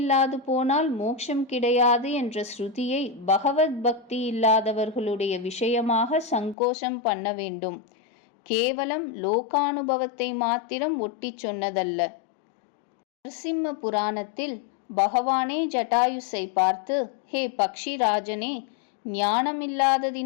போனால் மோட்சம் கிடையாது என்ற ஸ்ருதியை பகவத் பக்தி இல்லாதவர்களுடைய விஷயமாக சங்கோஷம் பண்ண வேண்டும். கேவலம் லோகானுபவத்தை மாத்திரம் ஒட்டி சொன்னதல்ல. நரசிம்ம புராணத்தில் பகவானே ஜட்டாயுஸை பார்த்து, ஹே பக்ஷிராஜனே,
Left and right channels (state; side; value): drops out; right; at 6.6 s